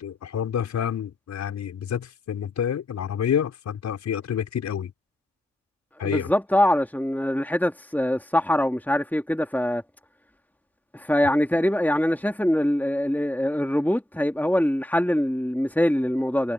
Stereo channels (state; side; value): normal; both; correlation 0.83